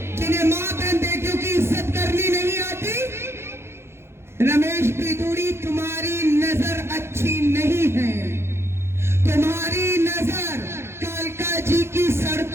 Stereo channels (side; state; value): left; late; 0.12 ms